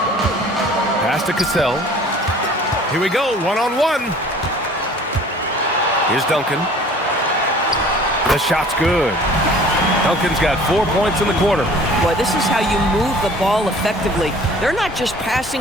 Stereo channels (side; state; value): both; normal; correlation 0.49